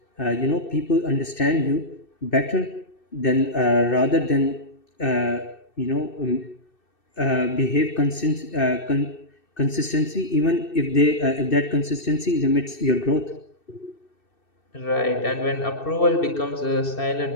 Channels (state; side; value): late; right; 2.6 ms